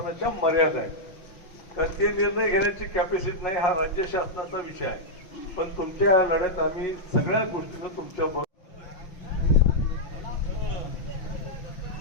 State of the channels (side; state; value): right; late; 5.9 ms